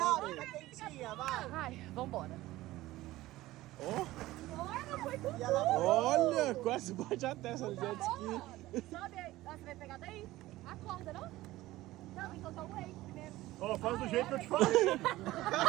tá quentinha, vai. Ai, vambora. Olha, foi tudo. Olha, quase bate a testa no jet ski. Sobe aí. Ah, você vai pegar daí? Acorda, não? Não, então tá o wake primeiro. Ó, faz do jeito que eu te falei. Ela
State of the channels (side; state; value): left; quieter; 17.1 dB